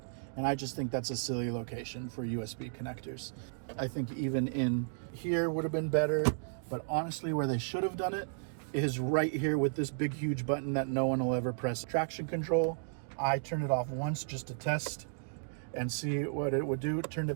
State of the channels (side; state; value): left; silent; digital silence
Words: And I just think that's a silly location for USB connectors. I think even in here would have been better, but honestly, where they should have done it is right here with this big, huge button that no one will ever press. Traction control. I turned it off once just to test and see what it would do. Turned